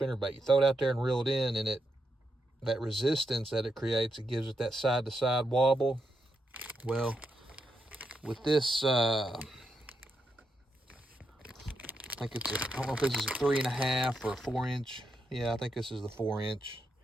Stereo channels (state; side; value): normal; both; correlation 0.83